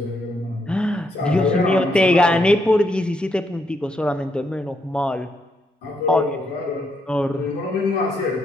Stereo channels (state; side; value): normal; both; correlation 0.77